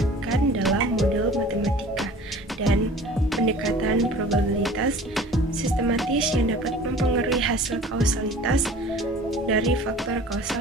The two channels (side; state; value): both; normal; correlation 0.44